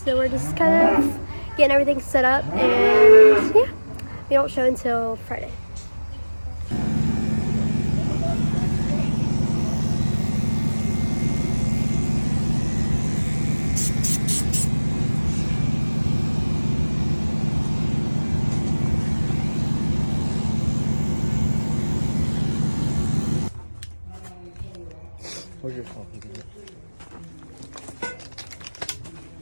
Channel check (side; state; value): both; inverted; correlation -1.00